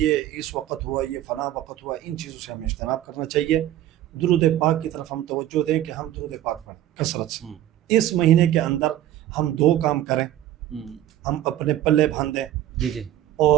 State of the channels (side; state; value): left; quieter; 12.9 dB